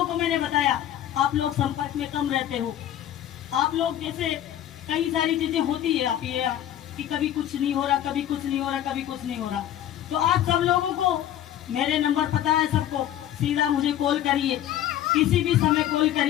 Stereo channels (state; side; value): quieter; right; 11.7 dB